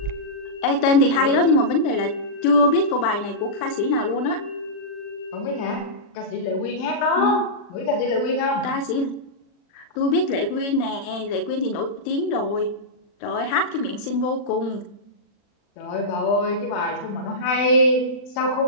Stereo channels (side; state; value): right; late; 40 ms